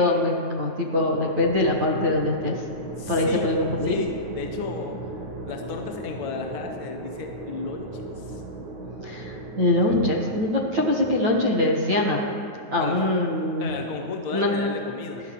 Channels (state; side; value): late; left; 9.4 ms